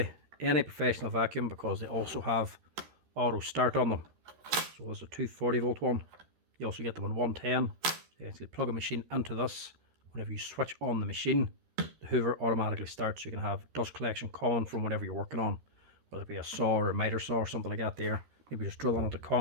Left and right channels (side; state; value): left; late; 13 ms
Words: any professional vacuum, because they also have auto start on them. So there's a 240 volt one. You also get them on 110. You actually plug a machine into this. Whenever you switch on the machine, the hoover automatically starts. You can have dust collection coming from whatever you're working on, whether it be a saw or a miter saw or something like that there. Maybe just drilling into